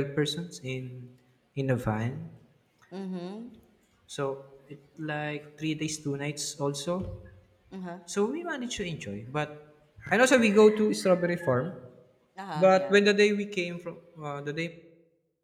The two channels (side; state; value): both; identical; correlation 1.00